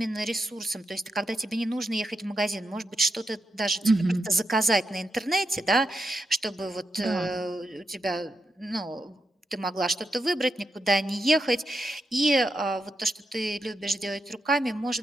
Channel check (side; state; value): both; normal; correlation 0.84